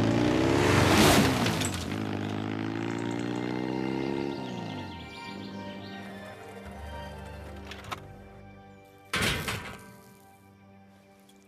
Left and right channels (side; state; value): both; identical; correlation 1.00